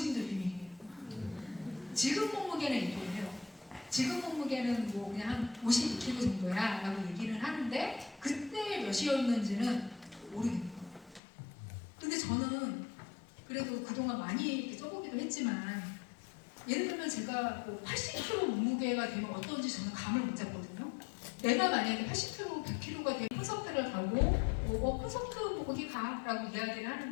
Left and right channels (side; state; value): right; drops out; at 11.2 s